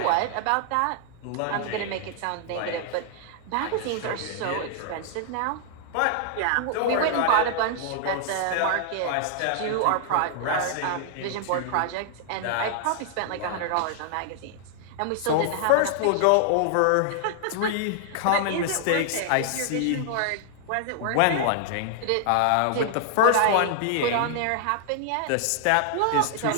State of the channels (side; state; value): both; different; correlation -0.01